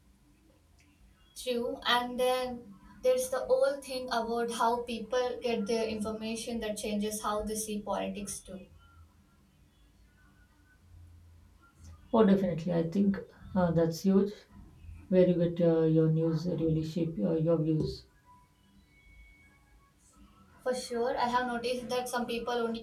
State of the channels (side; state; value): both; identical; correlation 1.00